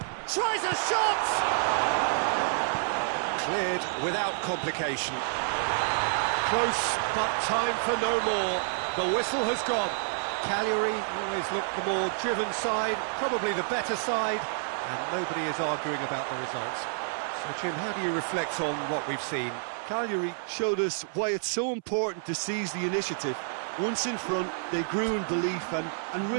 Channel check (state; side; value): silent; left; 59 dB below the other